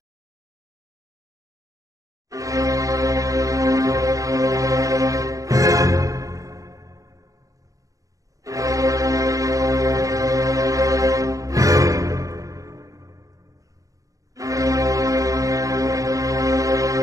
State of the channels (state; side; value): late; left; 0.16 ms